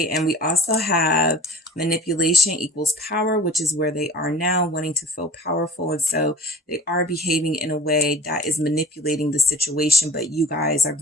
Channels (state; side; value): normal; both; correlation 0.41